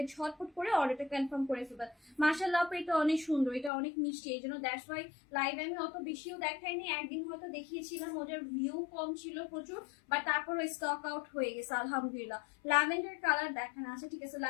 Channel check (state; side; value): drops out; right; at 3.7 s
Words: ঝটপট করে অর্ডারটা কনফার্ম করে ফেলবেন। মাশাআল্লাহ আপু এটা অনেক সুন্দর, এটা অনেক মিষ্টি, এই জন্য দ্যাটস ওয়াই লাইভ আমি অত বেশিও দেখাইনি, একদিন হয়তো দেখিয়েছিলাম, ওটার ভিউ কম ছিল প্রচুর, বাট তারপরে স্টক আউট হয়ে গেছে আলহামদুলিল্লাহ। ল্যাভেন্ডার কালার দেখানো আছে, ঠিক আছে,